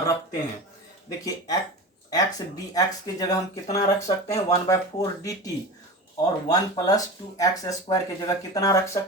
रखते हैं। देखिए x dx की जगह हम कितना रख सकते हैं, 1/4 dt, और 1+2x² की जगह कितना रख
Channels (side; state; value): both; normal; correlation 0.28